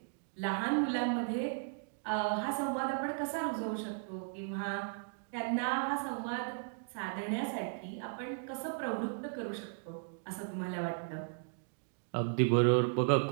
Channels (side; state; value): left; silent; digital silence